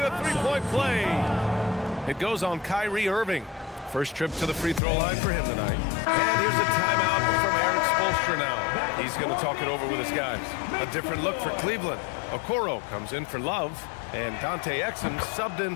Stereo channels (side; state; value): right; drops out; at 4.8 s